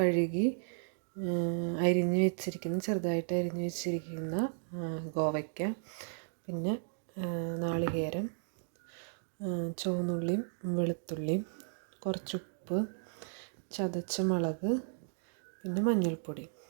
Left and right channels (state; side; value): silent; left; digital silence